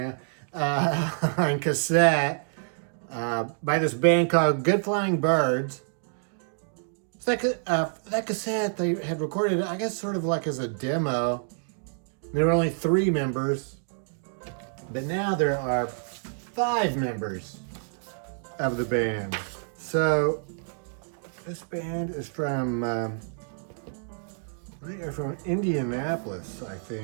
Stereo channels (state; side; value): silent; left; digital silence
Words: now, on cassette by this band called Good Flying Birds. So that cassette they had recorded, I guess, sort of like as a demo. There were only 3 members, but now there are 5 members of the band. So this band is from, they are from Indianapolis, I